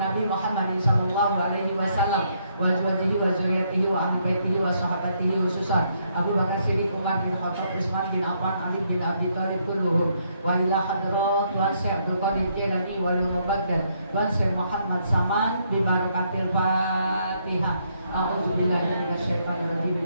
Muhammad sallallahu alaihi wasallam wa azwajihi wa zurriyyatihi wa ahli baitihi wa sahabatihi khususan Abu Bakar Siddiq, Umar bin Khattab, Utsman bin Affan, Ali bin Abi Thalib kulluhum wa ila hadrat Tuan Syekh Abdul Qadir Jailani wal Mubaddal Tuan Syekh Muhammad Saman bi barakatil Fatihah. A'udzubillahi minasyaitonir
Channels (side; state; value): both; inverted; correlation -0.73